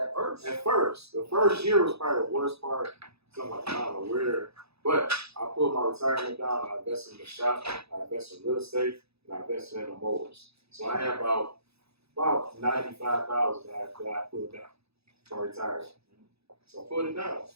first. at first. The first year was probably the worst part. So I'm like, I don't know where. But I pulled my retirement down. I invested in the shop. I invested in real estate. And I invested in the mowers. So I have about $95,000 that I pulled down for retirement. So I pulled it down.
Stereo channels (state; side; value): late; left; 0.78 ms